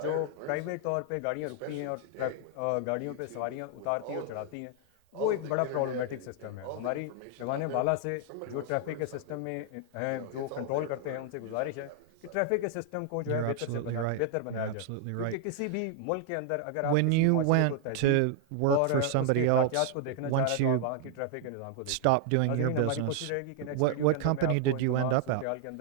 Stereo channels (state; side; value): different; both; correlation 0.00